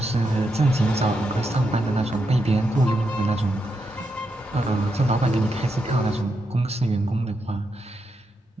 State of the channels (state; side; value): normal; both; correlation 0.83